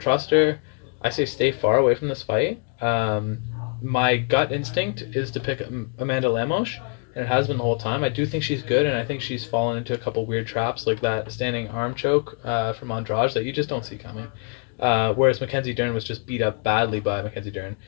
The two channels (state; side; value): quieter; right; 39.6 dB